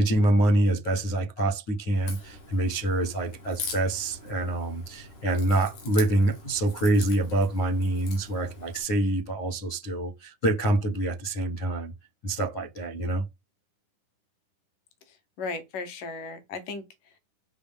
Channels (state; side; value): late; right; 9.6 ms